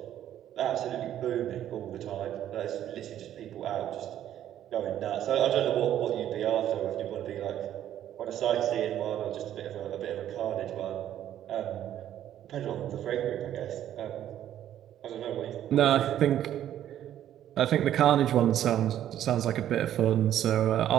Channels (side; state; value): left; quieter; 11.3 dB